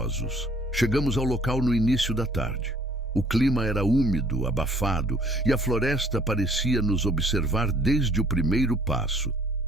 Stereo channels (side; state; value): both; normal; correlation 0.58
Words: Chegamos ao local no início da tarde. O clima era úmido, abafado, e a floresta parecia nos observar desde o primeiro passo.